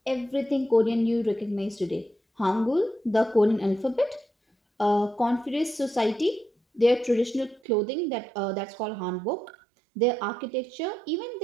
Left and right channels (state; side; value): drops out; left; at 7.6 s